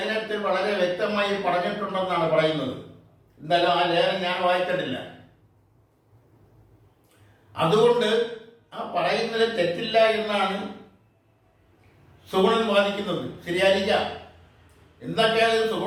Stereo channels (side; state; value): both; identical; correlation 1.00